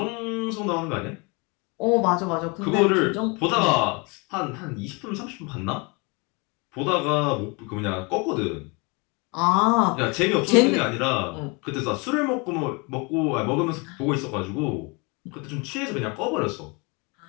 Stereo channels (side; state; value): right; quieter; 29.8 dB